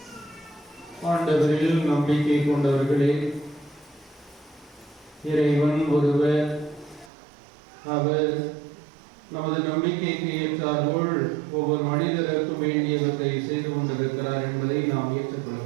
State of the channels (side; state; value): left; drops out; at 7.1 s